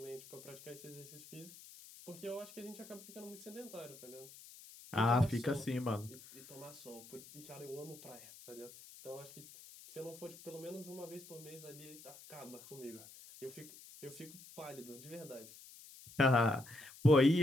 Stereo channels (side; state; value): left; noise; hiss, 18 dB below the sound